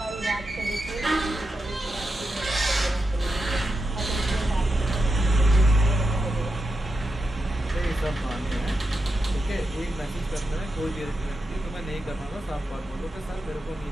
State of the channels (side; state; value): both; normal; correlation 0.88